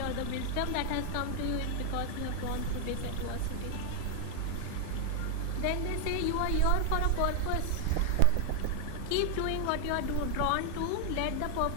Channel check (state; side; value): different; both; correlation 0.00